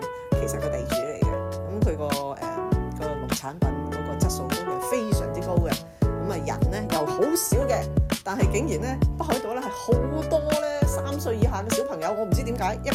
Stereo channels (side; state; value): both; identical; correlation 1.00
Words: 其實個地主嚟嘅。咁佢個農產品嗰個質素都係非常之高嘅。咁啊人咧又好少嘅，但係竟然咧北海道咧係好多咧3歲以下嘅小朋友，我唔知點解一